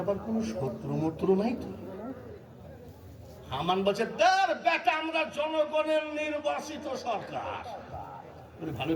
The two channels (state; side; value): identical; both; correlation 1.00